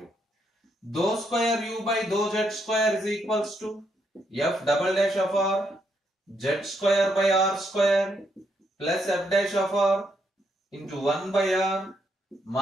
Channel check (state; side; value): normal; both; correlation 0.77